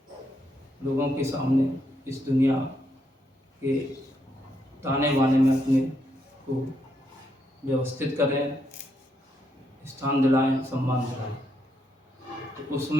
लोगों के सामने इस दुनिया के ताने बाने में अपने को व्यवस्थित करें, स्थान दिलाएं, सम्मान दिलाएं। तो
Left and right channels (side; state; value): both; normal; correlation 0.78